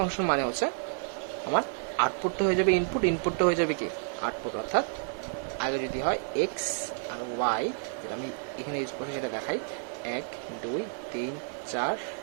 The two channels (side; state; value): left; silent; 56 dB below the other